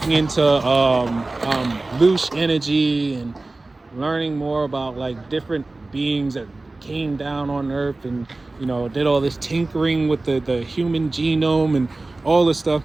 into loose energy and learning more about like different beings that came down on Earth and did all this tinkering with the human genome and all this stuff.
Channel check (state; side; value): quieter; left; 3.1 dB